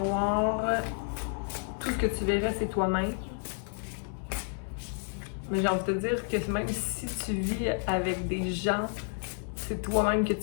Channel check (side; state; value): right; silent; 57 dB below the other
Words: tout ce que tu verrais, c'est toi-même. Mais j'ai envie de te dire que même si tu vis avec des gens, c'est toi-même que